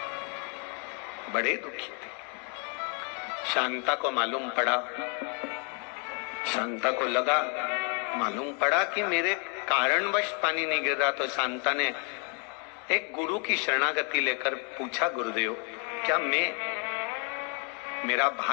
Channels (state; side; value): quieter; right; 38.1 dB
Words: बड़े दुखी थे। शांता को मालूम पड़ा, शांता को लगा, मालूम पड़ा कि मेरे कारणवश पानी नहीं गिर रहा। तो शांता ने एक गुरु की शरणागति लेकर पूछा, गुरुदेव क्या मेरा